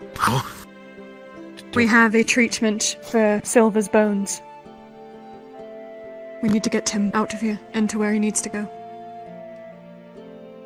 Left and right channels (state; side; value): identical; both; correlation 1.00